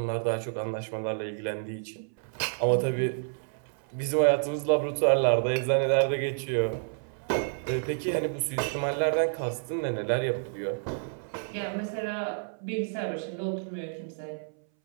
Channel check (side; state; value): left; silent; 58 dB below the other